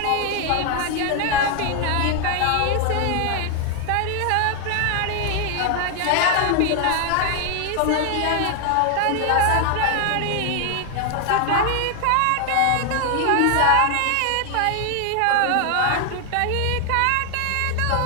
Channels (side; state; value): both; different; correlation 0.00